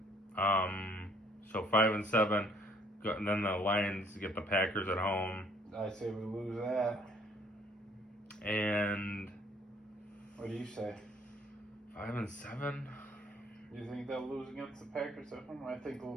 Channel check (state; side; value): normal; both; correlation 0.61